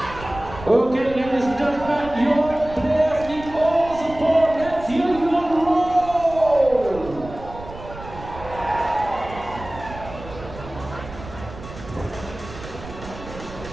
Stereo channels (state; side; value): noise; right; rumble, 14 dB below the sound